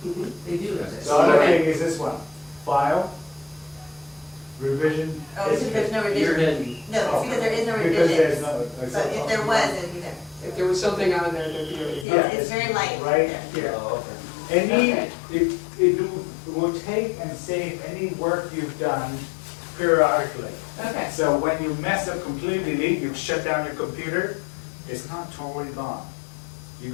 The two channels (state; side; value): drops out; right; at 12.1 s